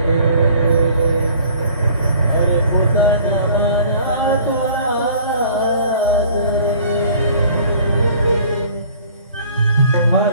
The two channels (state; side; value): inverted; both; correlation -0.52